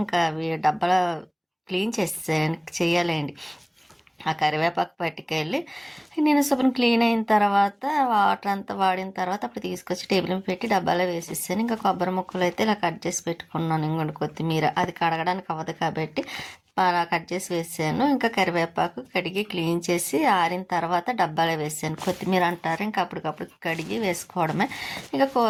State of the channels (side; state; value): both; identical; correlation 1.00